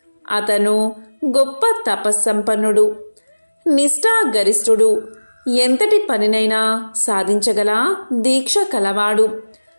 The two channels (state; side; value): inverted; both; correlation -1.00